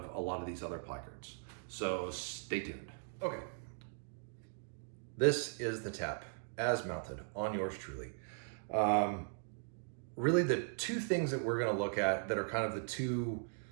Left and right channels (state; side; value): silent; left; digital silence